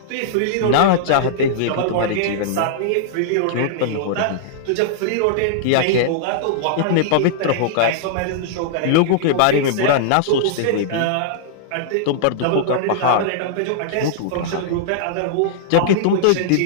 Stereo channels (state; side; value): different; both; correlation -0.02